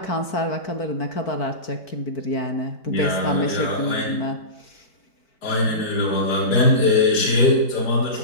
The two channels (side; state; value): right; late; 4.5 ms